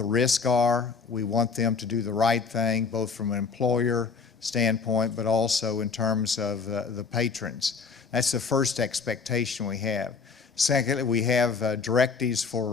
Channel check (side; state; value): right; quieter; 5.2 dB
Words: risks are. We want them to do the right thing, both from an employer standpoint, but also in terms of the patrons. That's the first expectation we have. Secondly, we have directives for a